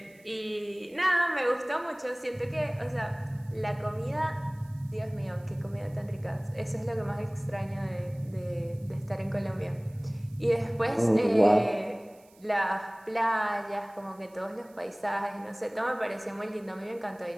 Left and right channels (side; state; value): right; noise; hiss, 29 dB below the sound